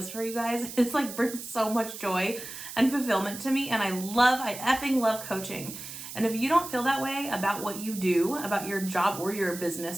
for you guys. It's like brings so much joy and fulfillment to me, and I effing love coaching. And if you don't feel that way about what you do, about your job or your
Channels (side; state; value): right; noise; hiss, 10 dB below the sound